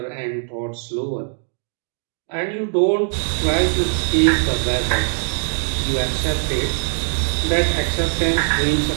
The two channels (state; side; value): silent; left; digital silence